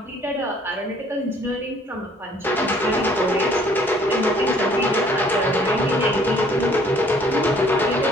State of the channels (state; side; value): normal; both; correlation 0.59